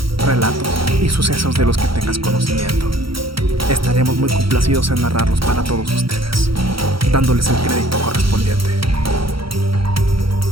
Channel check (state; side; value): late; left; 0.75 ms